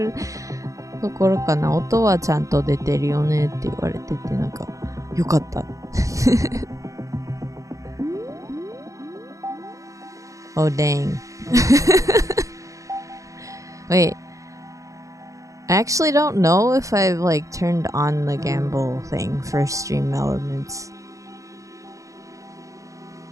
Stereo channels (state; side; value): late; left; 0.16 ms